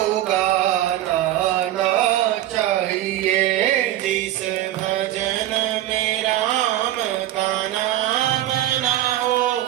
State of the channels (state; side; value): quieter; left; 13.6 dB